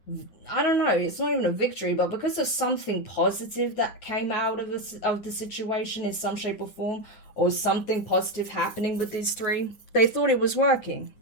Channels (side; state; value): right; late; 9.3 ms